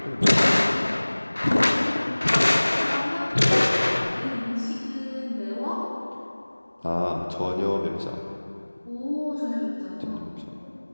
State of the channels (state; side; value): inverted; both; correlation -1.00